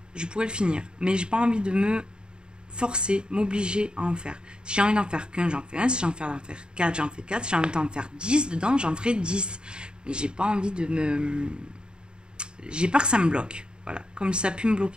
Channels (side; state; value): left; late; 0.049 ms